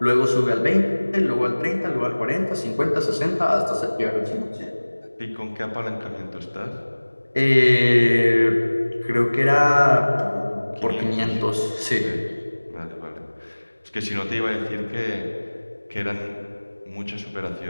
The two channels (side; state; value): both; inverted; correlation -1.00